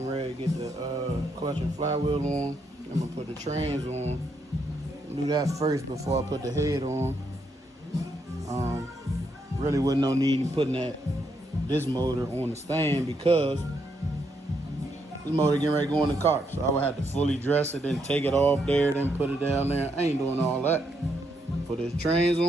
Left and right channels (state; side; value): normal; both; correlation 0.77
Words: ready to get the clutch and flywheel on. I'm gonna put the trans on. Do that first before I put the head on. Really wasn't no need in putting this motor on the stand because this motor getting ready to go in the car. So I would have to fully dress it, then take it off there, then put it down there. I ain't doing all that. Put this trans